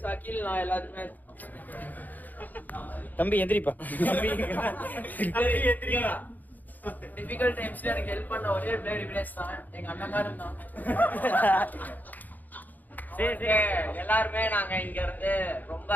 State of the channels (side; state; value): right; late; 0.083 ms